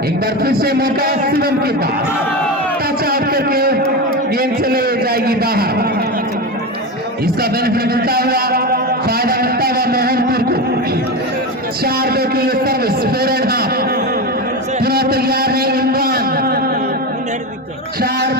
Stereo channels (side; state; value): both; normal; correlation 0.19